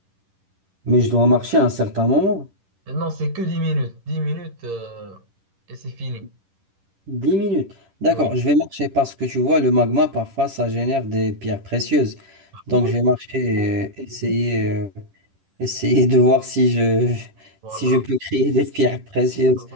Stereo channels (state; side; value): late; left; 10 ms